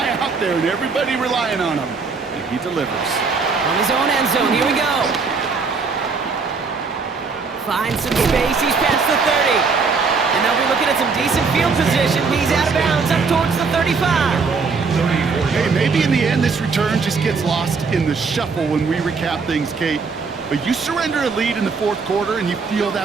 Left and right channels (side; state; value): left; quieter; 4.8 dB